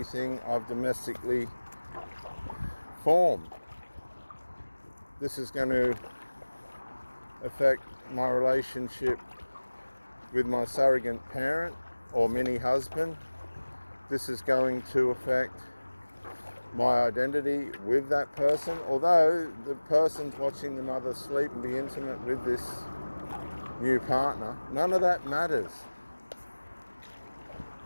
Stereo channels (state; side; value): inverted; both; correlation -1.00